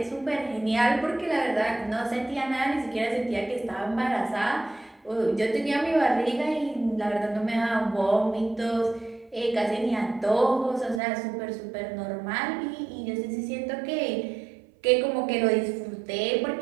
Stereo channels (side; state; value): left; drops out; at 11.0 s